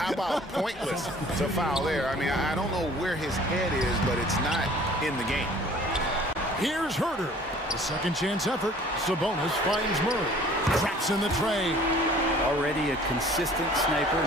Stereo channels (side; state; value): both; normal; correlation 0.51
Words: about pointless to foul there? I mean, I don't know where his head is, but it's not in the game. Here's Herter. The second chance effort. Sabonis finds Murray. Traps in the tray. Already a consistent